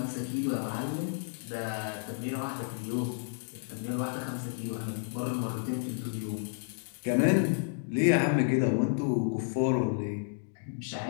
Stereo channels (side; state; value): right; silent; digital silence